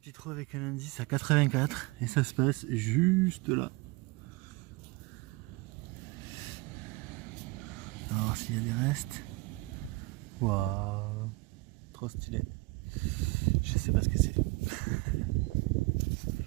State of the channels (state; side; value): quieter; left; 23.4 dB